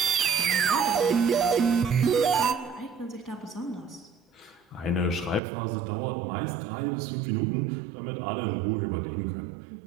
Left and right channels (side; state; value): left; drops out; at 5.4 s